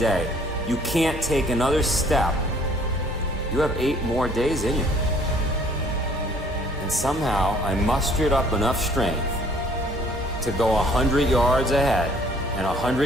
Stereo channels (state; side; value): normal; both; correlation 0.58